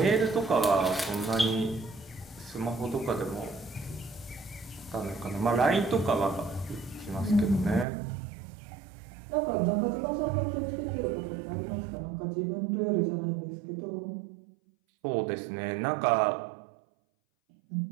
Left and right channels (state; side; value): drops out; left; at 7.9 s